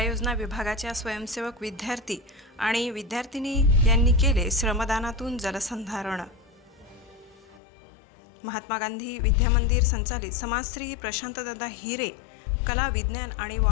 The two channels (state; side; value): drops out; right; at 7.6 s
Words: योजना विभागाच्या स्वयंसेवक विद्यार्थी आणि विद्यार्थिनी यांनी केले श्रमदानातून जलसंधारण। महात्मा गांधी विद्यामंदिर संचालित समाजश्री प्रशांतदादा हिरे कला विज्ञान आणि